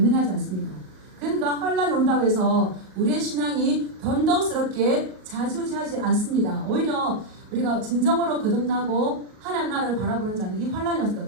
그러니까 환란이 온다고 해서 우리의 신앙이 변덕스럽게 자주지하지 않습니다. 오히려 우리가 진정으로 거듭나고 하나님 나라를 바라보는 자는 이 환란이 왔을 때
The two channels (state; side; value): late; left; 38 ms